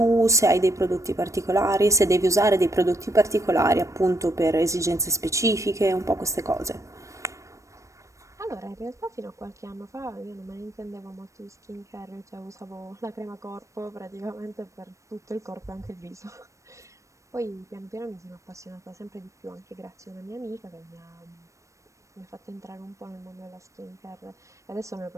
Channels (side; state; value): left; late; 0.15 ms